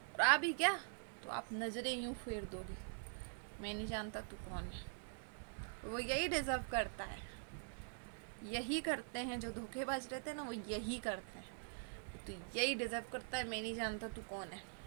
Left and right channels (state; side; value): silent; left; digital silence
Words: और आ भी क्या तो आप नज़रें यूं फेर दोगे, मैं नहीं जानता तू कौन है। वो यही डिजर्व करता है, यही करते हैं जो धोखेबाज रहते हैं ना, वो यही करते हैं। तो यही डिजर्व करता है, मैं नहीं जानता तू कौन है।